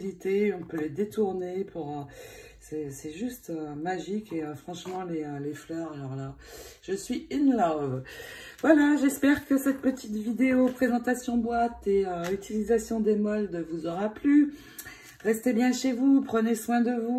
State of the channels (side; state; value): both; identical; correlation 1.00